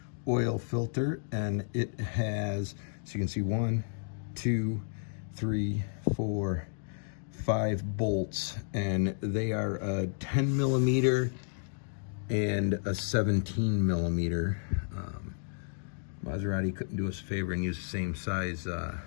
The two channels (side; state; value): right; silent; digital silence